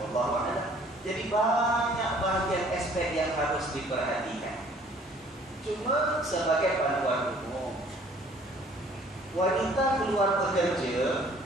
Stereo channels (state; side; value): normal; both; correlation 0.56